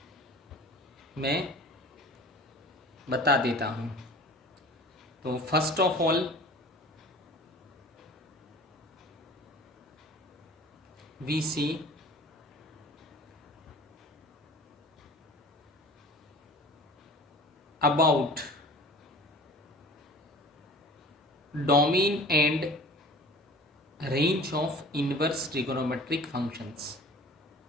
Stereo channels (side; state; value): both; normal; correlation 0.43